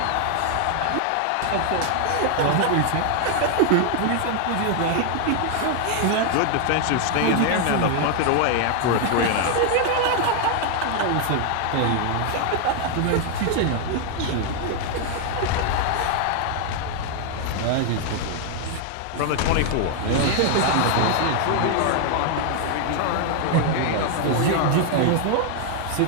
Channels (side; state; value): both; different; correlation 0.00